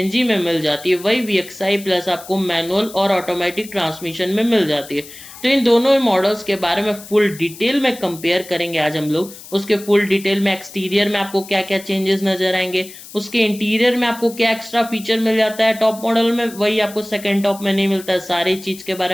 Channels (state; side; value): noise; left; hiss, 17 dB below the sound